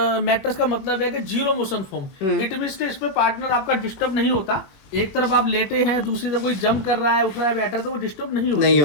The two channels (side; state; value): right; late; 21 ms